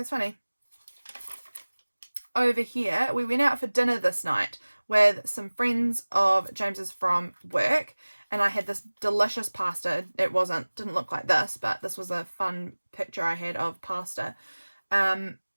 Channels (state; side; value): inverted; both; correlation -1.00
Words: funny. Over here, we went out for dinner this night with some friends of James's from work, and I had this delicious pasta. It didn't look like this, but this was a fun picture I had of pasta.